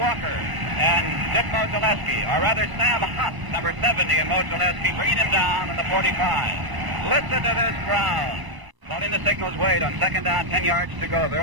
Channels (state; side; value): late; left; 1.0 ms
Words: Walker and Dick Mozileski, or rather Sam Huff, number 70 in Mozileski, bringing him down in the 45. Listen to this crowd. Letting the signals wait on second down, 10 yards to go.